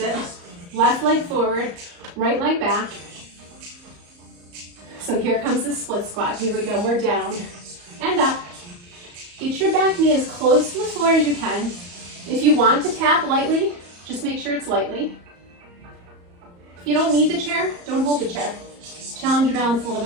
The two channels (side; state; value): left; late; 34 ms